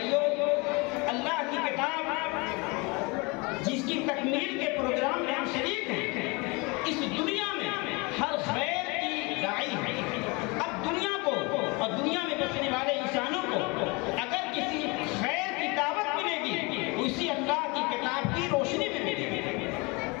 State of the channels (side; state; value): right; quieter; 27.6 dB